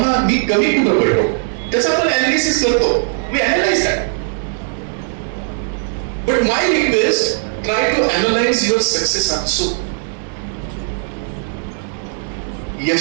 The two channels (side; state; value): left; silent; digital silence